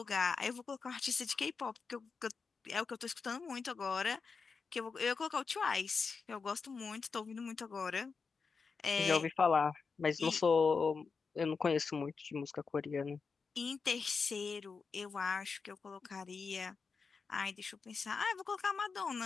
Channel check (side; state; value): right; quieter; 5.0 dB